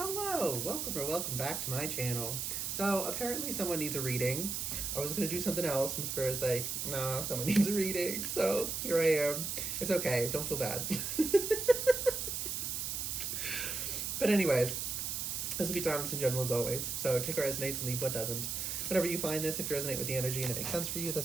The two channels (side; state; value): right; noise; hiss, 2 dB below the sound